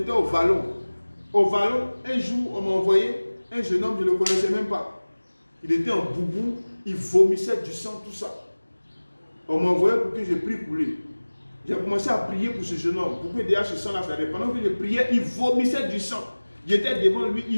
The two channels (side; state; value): both; inverted; correlation -1.00